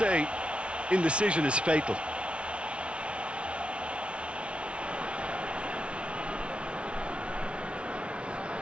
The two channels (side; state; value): left; late; 0.060 ms